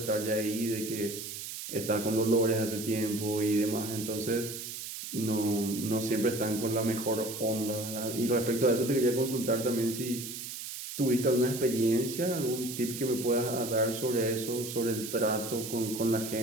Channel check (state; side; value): noise; right; hiss, 8 dB below the sound